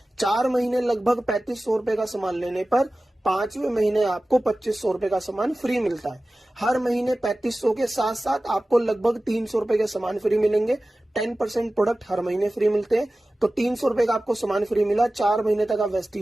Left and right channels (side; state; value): both; normal; correlation 0.96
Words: 4 महीने लगभग 3500 रुपए का सामान लेने पर 5वें महीने आपको 2500 रुपए का सामान फ्री मिलता है। हर महीने 3500 के साथ साथ आपको लगभग 300 रुपए के सामान फ्री मिलेंगे। 10% प्रोडक्ट हर महीने फ्री मिलते हैं, तो 300 रुपए का आपको सामान फ्री मिला। 4 महीने तक आप